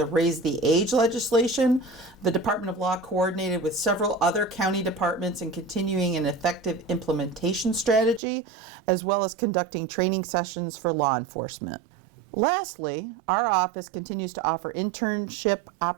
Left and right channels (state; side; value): drops out; left; at 8.2 s